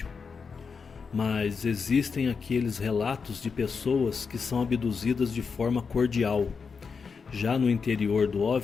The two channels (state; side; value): quieter; right; 5.4 dB